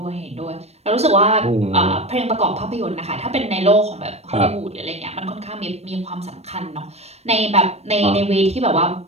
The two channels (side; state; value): left; late; 0.31 ms